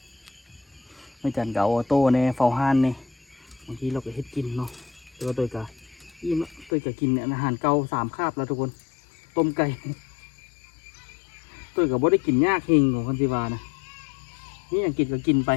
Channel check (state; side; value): drops out; right; at 6.7 s